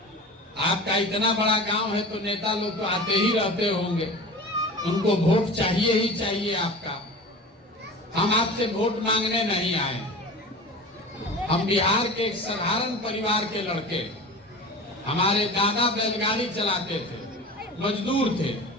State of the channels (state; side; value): normal; both; correlation 0.35